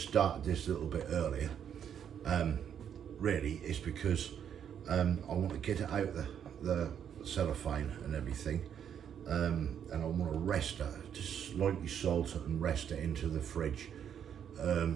started this a little bit earlier, really, is because I want to get it out the cellophane and everything, and I want to rest it, just slightly salt it and rest it into the fridge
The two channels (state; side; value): quieter; left; 8.7 dB